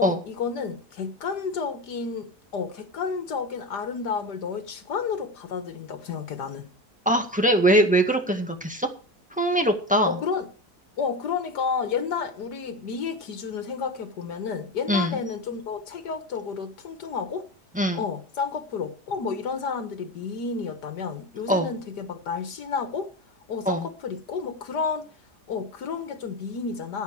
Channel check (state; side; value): normal; both; correlation 0.21